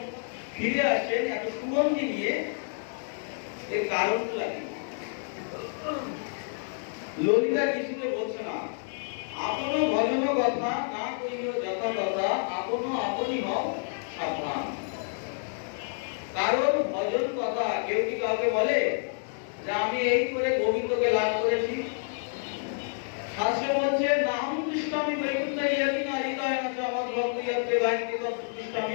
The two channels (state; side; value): silent; right; 59 dB below the other